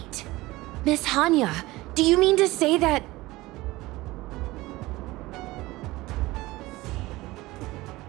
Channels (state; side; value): quieter; left; 19.6 dB